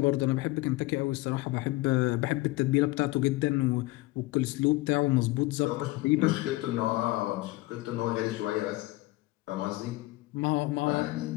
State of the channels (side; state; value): right; quieter; 20.0 dB